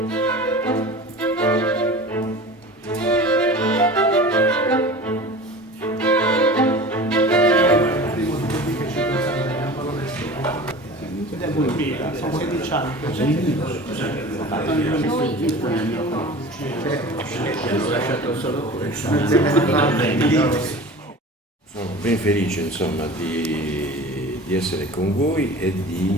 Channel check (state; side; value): normal; both; correlation 0.37